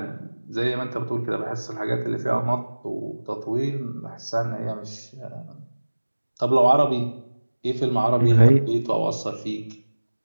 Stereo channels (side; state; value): both; inverted; correlation -1.00